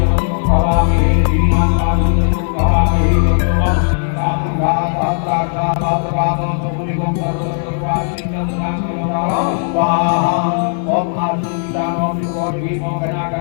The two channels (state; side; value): silent; right; 58 dB below the other